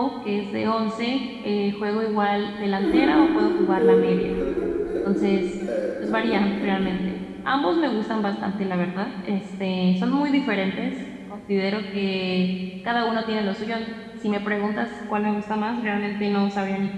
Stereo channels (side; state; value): both; identical; correlation 1.00